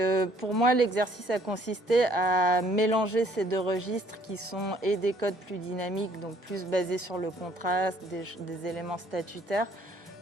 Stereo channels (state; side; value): normal; both; correlation 0.61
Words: pour moi, l'exercice a consisté à mélanger ces deux registres qui sont et des codes plus dynamiques, donc plus basés sur le contraste, des éléments statutaires,